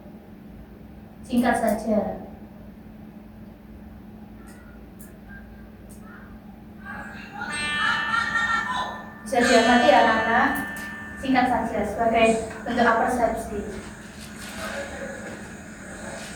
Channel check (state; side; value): identical; both; correlation 1.00